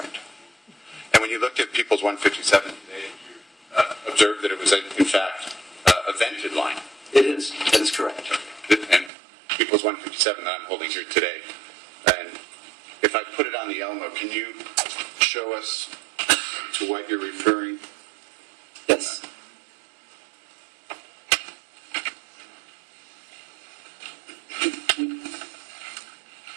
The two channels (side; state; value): left; drops out; at 9.1 s